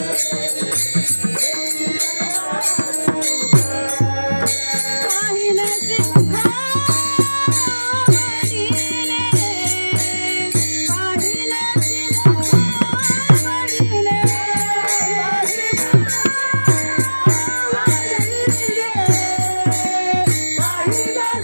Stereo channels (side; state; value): both; inverted; correlation -1.00